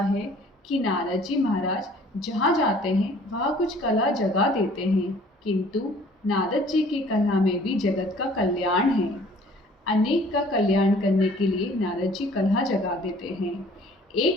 कि नारद जी महाराज जहाँ जाते हैं वहाँ कुछ कला जगा देते हैं, किंतु नारद जी की कला में भी जगत का कल्याण है। अनेक का कल्याण करने के लिए नारद जी कला जगा देते हैं।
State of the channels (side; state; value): both; normal; correlation 0.54